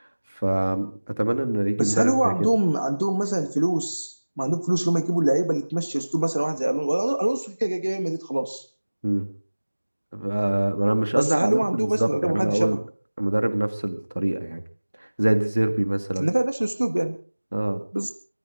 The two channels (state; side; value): inverted; both; correlation -1.00